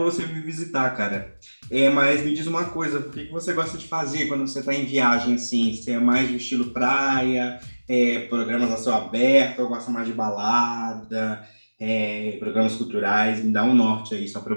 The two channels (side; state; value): both; inverted; correlation -1.00